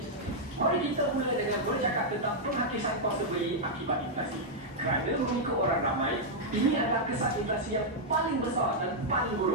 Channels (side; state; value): both; normal; correlation -0.05